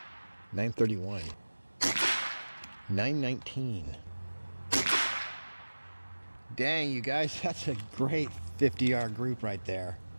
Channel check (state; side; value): inverted; both; correlation -1.00